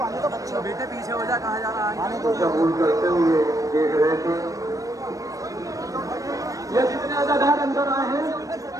آنے تو بچے بیٹے پیچھے ہو جا, کہاں جا رہا ہے؟ آنے تو قبول کرتے ہوئے دیکھ رہے تھے. یہ جتنے عزادار اندر آئے ہیں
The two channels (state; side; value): late; left; 0.16 ms